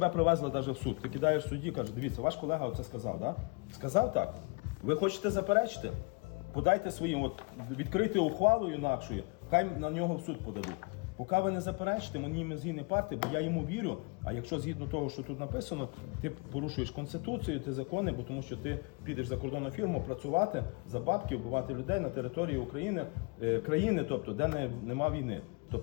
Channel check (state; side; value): quieter; right; 31.2 dB